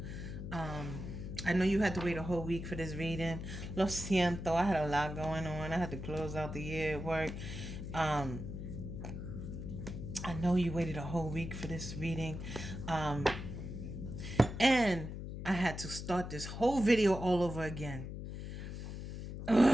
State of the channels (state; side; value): noise; left; hum, 7 dB below the sound